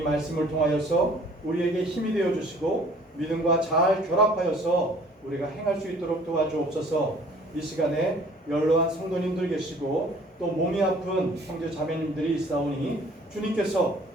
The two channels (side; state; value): both; normal; correlation 0.54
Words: 말씀을 통하여서 우리에게 힘이 되어 주시고 믿음과 잘 결합하여서 우리가 행할 수 있도록 도와주옵소서. 이 시간에 연로한 성도님들 계시고 또 몸이 아픈 형제 자매님들이 있사오니 주님께서